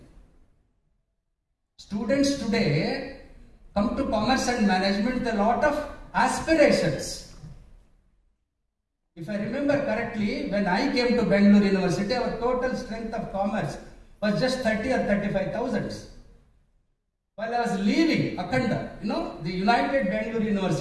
Students today come to commerce and management with a lot of aspirations. If I remember correctly, when I came to Bangalore University, our total strength of commerce was just 30 or 35,000. While I was leaving Akhanda, the United Bangalore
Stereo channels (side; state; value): both; identical; correlation 1.00